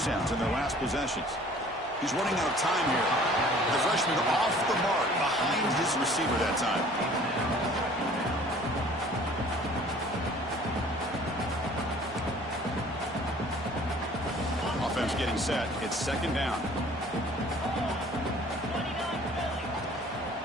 in their last possessions. He's running out of time here. The freshman off the mark behind his receiver that time. Offense getting set. It's second down.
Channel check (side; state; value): both; normal; correlation 0.51